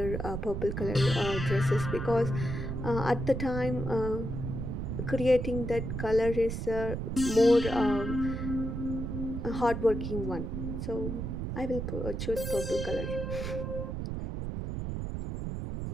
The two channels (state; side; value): noise; right; rumble, 4 dB below the sound